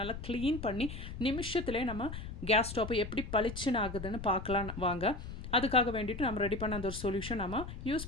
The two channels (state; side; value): noise; left; rumble, 9 dB below the sound